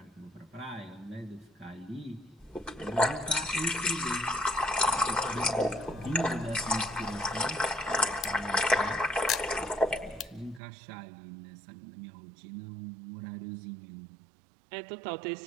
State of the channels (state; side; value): drops out; left; at 10.6 s